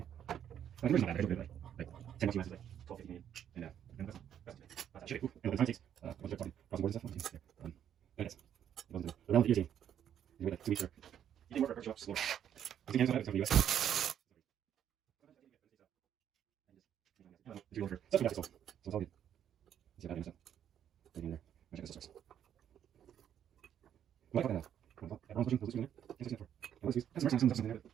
day. The conversion's not bad, right? Like 10 bucks US is like 12, 15 Canadian. And that's shit. Cool. And the time takes, once they're talking crossing borders and stuff, I guess. It wasn't around the year team. You wait like 2 weeks or, you can work for show up slower. I think Canada's not, it's going to be US. going for stuff so it's all good. See that stuff. Right in there. I'll check this first. What the hell? Everyone's pushing those in there. That's for. That's the first time something there.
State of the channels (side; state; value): left; quieter; 9.6 dB